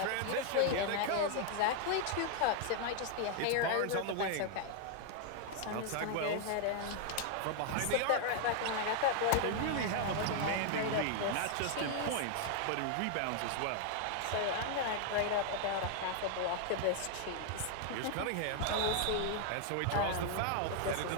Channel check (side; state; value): both; different; correlation 0.00